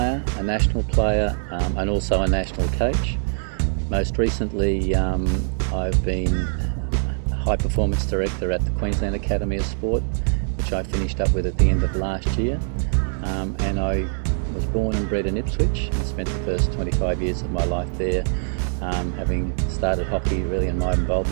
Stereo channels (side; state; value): left; silent; 63 dB below the other